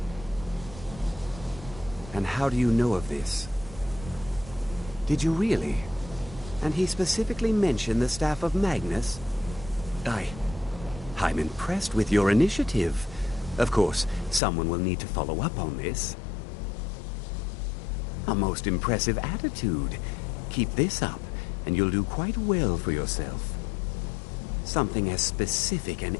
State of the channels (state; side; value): drops out; right; at 14.4 s